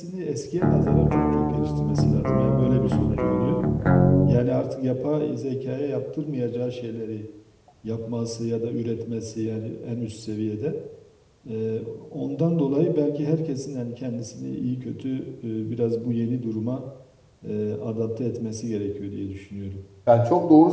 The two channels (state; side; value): identical; both; correlation 1.00